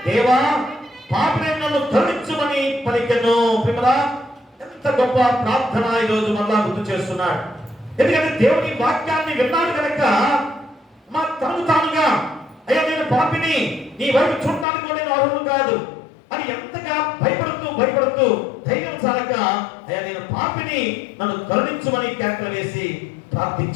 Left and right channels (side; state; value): right; drops out; at 14.7 s